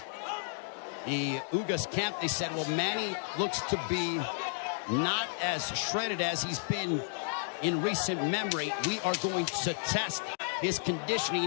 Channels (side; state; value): right; silent; digital silence